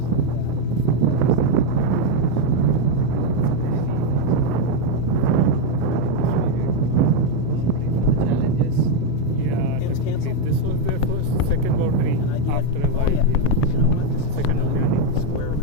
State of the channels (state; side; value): different; both; correlation 0.02